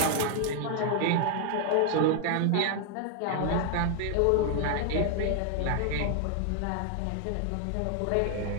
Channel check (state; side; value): different; both; correlation 0.00